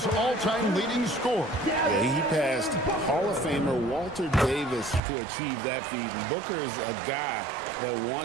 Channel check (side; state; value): left; drops out; at 5.0 s